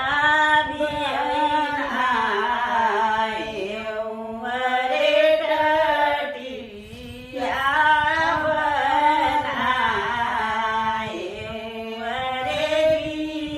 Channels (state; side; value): identical; both; correlation 1.00